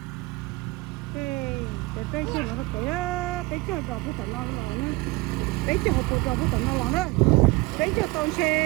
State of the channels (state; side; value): quieter; left; 22.7 dB